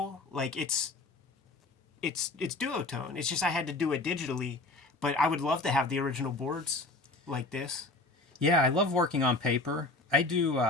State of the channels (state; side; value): quieter; right; 3.0 dB